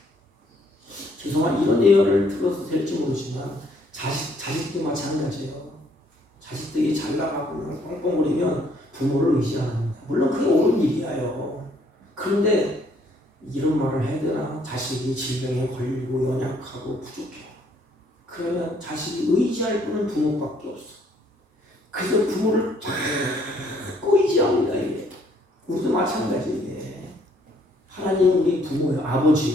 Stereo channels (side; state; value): both; normal; correlation 0.65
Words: 죄송한 이런 예언을 들어서 될지 모르지만 자식도 마찬가지예요. 자식들이 잘 나가고 뻥뻥거리면 부모를 의지 안 합니다. 물론 그게 옳은 일이에요. 그런데 이런 말을 해야 되나? 자식이 질병에 걸리고 연약하고 부족해. 그러면 자식이 의지할 분은 부모밖에 없어. 그래서 부모를 자꾸 의지합니다. 이게. 우리도 마찬가지예요. 하나님 우리 부모예요.